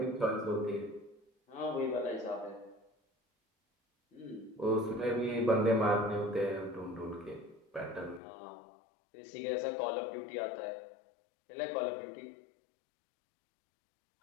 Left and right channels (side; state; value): right; drops out; at 8.2 s